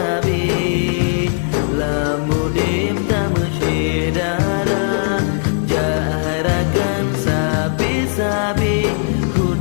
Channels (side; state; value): right; silent; 63 dB below the other